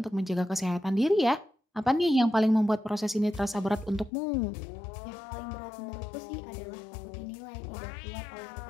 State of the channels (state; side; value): drops out; right; at 4.1 s